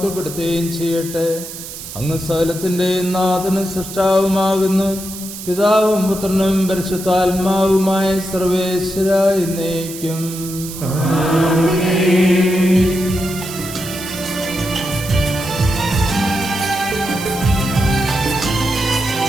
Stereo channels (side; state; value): right; noise; hiss, 11 dB below the sound